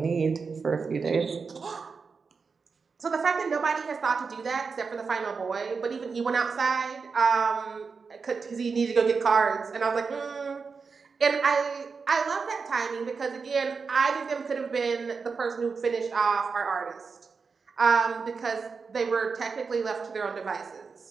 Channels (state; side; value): quieter; left; 5.1 dB